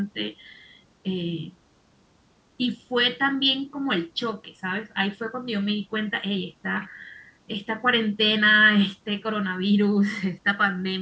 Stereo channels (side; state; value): both; identical; correlation 1.00